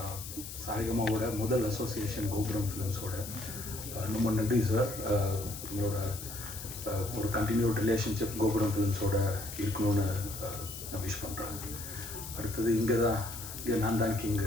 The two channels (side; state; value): left; noise; hiss, 10 dB below the sound